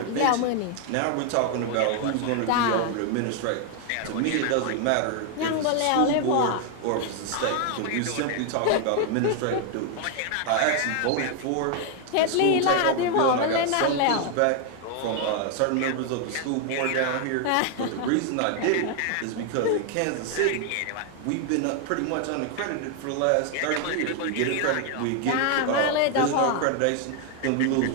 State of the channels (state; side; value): different; both; correlation 0.00